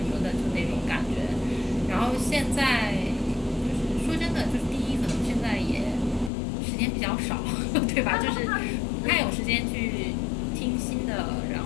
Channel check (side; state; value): right; drops out; at 6.3 s